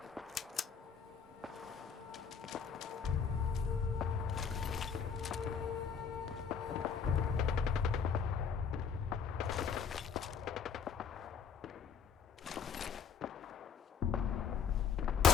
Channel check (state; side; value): quieter; right; 6.7 dB